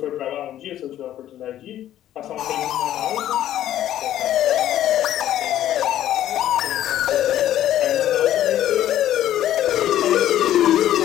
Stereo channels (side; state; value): right; quieter; 12.2 dB